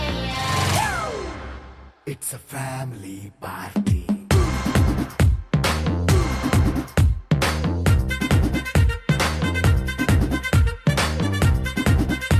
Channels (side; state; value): both; identical; correlation 1.00